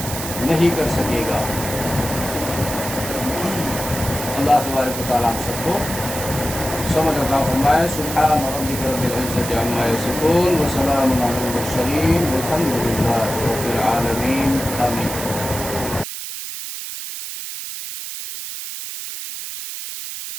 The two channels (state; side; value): noise; right; hiss, 7 dB below the sound